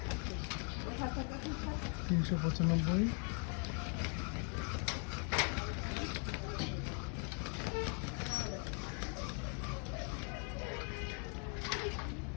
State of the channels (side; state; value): right; quieter; 39.8 dB